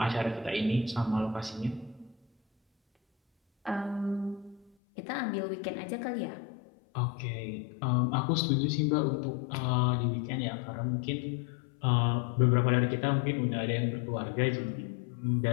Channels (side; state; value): right; drops out; at 4.7 s